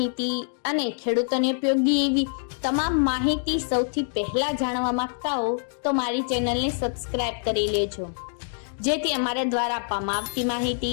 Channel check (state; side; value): silent; right; digital silence